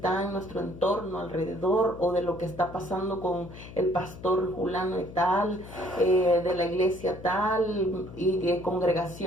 en nuestro entorno alrededor, o de lo que está pasando con el pastor fulano y tal, de la iglesia tal y de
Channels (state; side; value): noise; left; hum, 15 dB below the sound